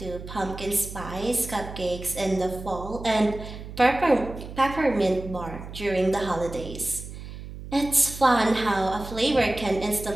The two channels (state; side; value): noise; right; hum, 12 dB below the sound